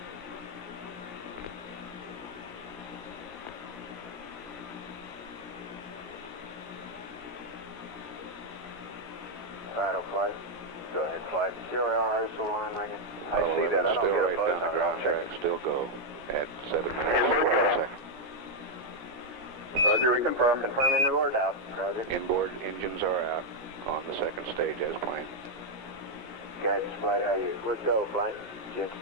Alright, flight. Go ahead, flight. CRR is the line, Megan. I Apollo see that. 11 I don't still get right down the ground track, still go at 7 minutes 12 seconds. Roger, we confirm. Confirm inboard out. Roger. Inboard engines are out on the second stage as planned. Guidance flight, how are you? We're go flight.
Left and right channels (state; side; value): late; left; 17 ms